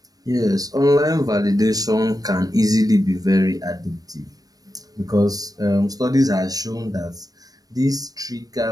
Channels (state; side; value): late; left; 0.18 ms